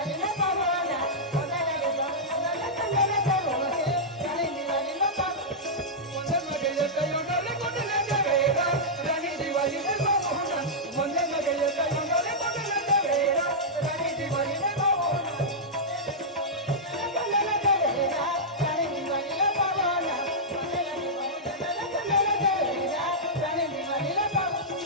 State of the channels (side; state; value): both; normal; correlation -0.10